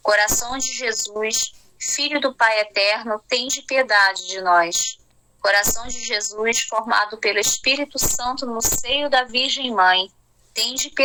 Coração de Jesus, Filho do Pai Eterno, tende piedade de nós. Coração de Jesus, formado pelo Espírito Santo no seio da Virgem Mãe, tende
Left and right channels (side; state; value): both; normal; correlation 0.96